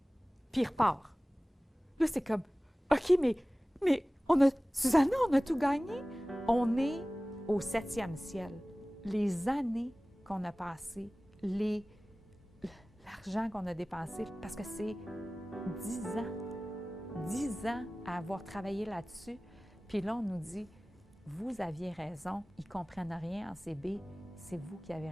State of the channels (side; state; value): both; normal; correlation 0.98